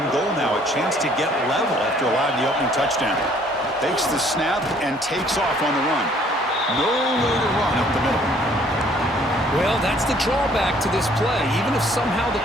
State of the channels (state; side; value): normal; both; correlation 0.60